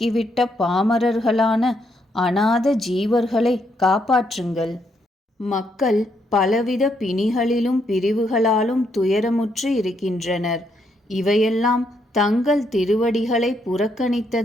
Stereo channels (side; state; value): both; normal; correlation 0.75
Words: பாமரர்களான அநாத ஜீவர்களை காப்பாற்றுங்கள். மக்கள் பலவித பிணிகளிலும் பிரிவுகளாலும் துயரமுற்று இருக்கின்றனர். இவையெல்லாம் தங்கள் திருவடிகளை